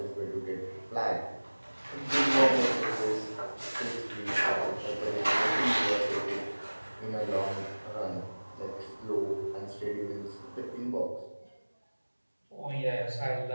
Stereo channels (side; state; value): both; inverted; correlation -1.00